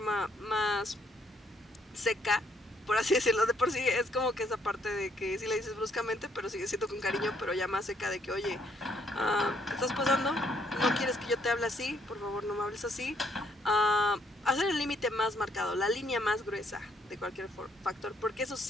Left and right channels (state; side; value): normal; both; correlation 0.70